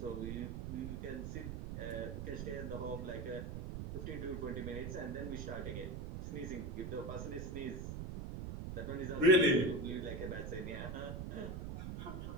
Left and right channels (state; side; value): noise; right; rumble, 5 dB below the sound